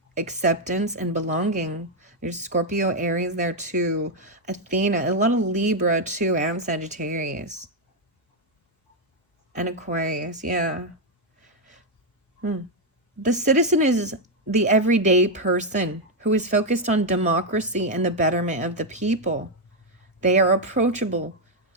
acceptance, and belonging. There's Scorpio, Aries there too. Athena, a lot of Libra too, and Sagittarius. And Aquarius, yeah. The citizen is the everyday person who is focused on democracy and the betterment of the people. They are approachable,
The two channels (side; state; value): both; normal; correlation 0.01